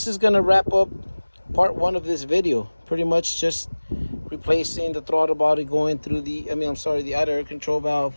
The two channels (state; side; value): inverted; both; correlation -1.00